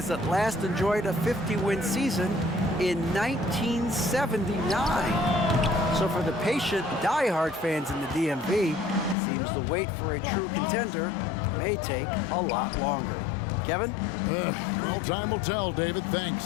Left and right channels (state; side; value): drops out; right; at 9.2 s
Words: that last enjoyed a 50-win season in 1979. So for the patient, diehard fans in the DMV, seems the wait for a true contender may take a lot longer. Kevin? Well, time will tell, David.